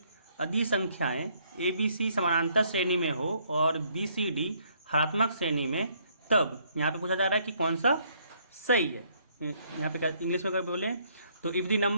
यदि संख्याएं ABC समानांतर श्रेणी में हो और BCD हरात्मक श्रेणी में, तब यहाँ पे पूछा जा रहा है कि कौन सा सही है। यहाँ पे क्या इंग्लिश में कर बोले तो if the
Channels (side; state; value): both; inverted; correlation -0.67